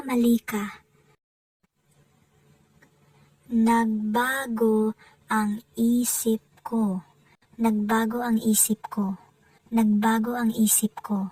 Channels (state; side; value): identical; both; correlation 1.00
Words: ka. Nagbago ang isip ko. Nagbago ang isip ko. Nagbago ang isip